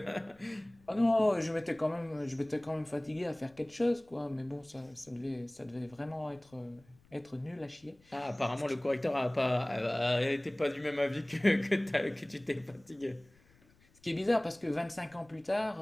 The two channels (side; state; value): left; noise; rumble, 30 dB below the sound